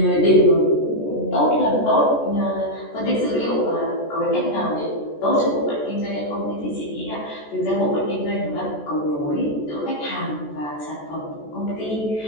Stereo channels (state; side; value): late; right; 14 ms